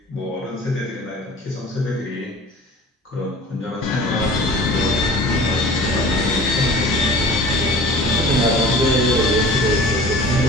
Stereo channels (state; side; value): normal; both; correlation 0.42